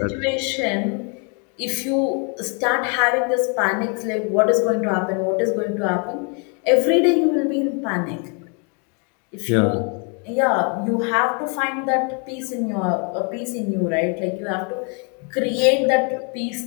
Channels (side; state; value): right; quieter; 37.1 dB